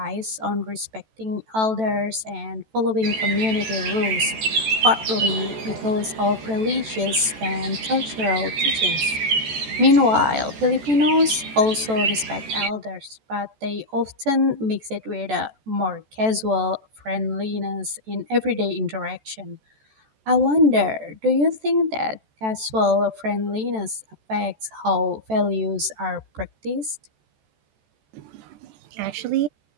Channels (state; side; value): late; left; 14 ms